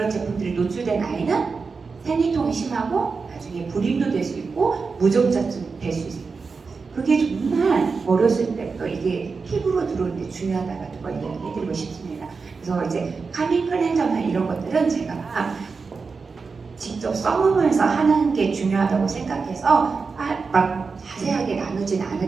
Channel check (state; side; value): quieter; left; 4.7 dB